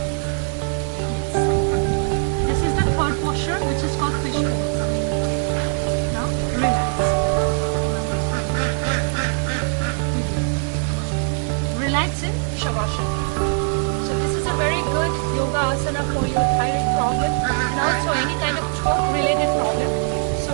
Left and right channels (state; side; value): silent; left; 65 dB below the other